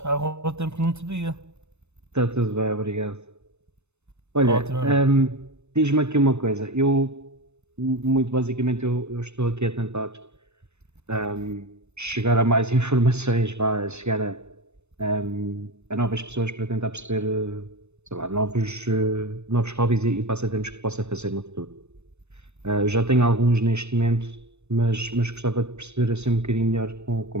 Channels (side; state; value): left; late; 0.81 ms